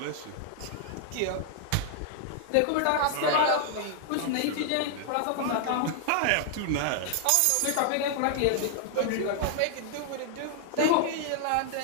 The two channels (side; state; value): both; different; correlation 0.00